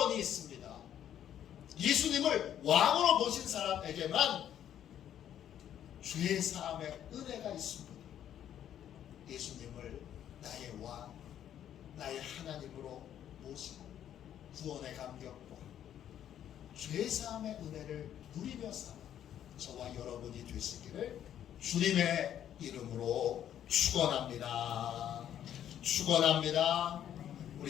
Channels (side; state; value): right; quieter; 10.4 dB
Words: 있습니다. 예수님을 왕으로 모신 사람에게만 죄 사함의 은혜가 있습니다. 예수님을 나의 왕, 나의 하나님으로 모시고 구원의 감격과 죄 사함의 은혜를 누리며 사는 저와 여러분이 되시기를 주님의 이름으로 축원합니다. 축원합니다.